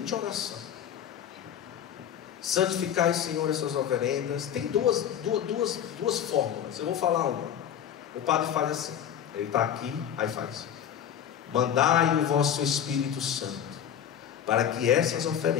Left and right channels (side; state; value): right; quieter; 9.3 dB